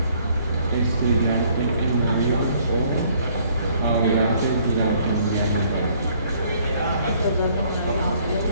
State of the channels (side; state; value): both; inverted; correlation -0.62